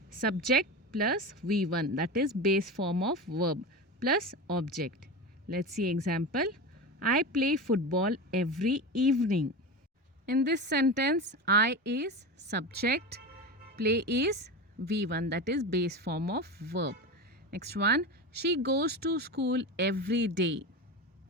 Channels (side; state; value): both; normal; correlation 0.24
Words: Subject plus V1, that is base form of verb, plus object. Let's see example. I play football every evening. In this sentence, I is subject, play is V1, that is base form of verb. Next one, she goes to school every day.